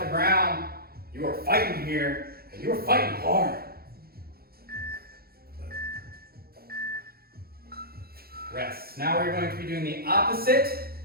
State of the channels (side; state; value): left; late; 0.44 ms